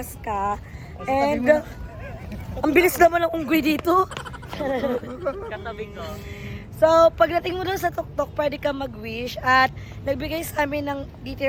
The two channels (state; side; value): identical; both; correlation 1.00